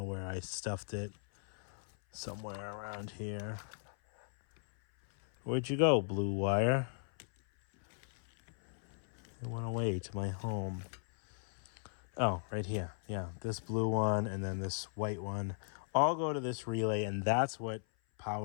where I stuffed it. Somewhere around here. Where'd you go, blue wire? It went away to my home. Oh, right here. Yeah, this blue one and then this white one all go to this relay, and that's what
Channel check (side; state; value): right; silent; 53 dB below the other